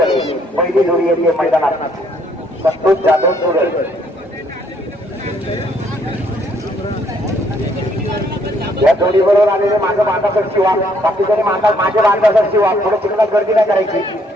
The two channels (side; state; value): both; normal; correlation 0.67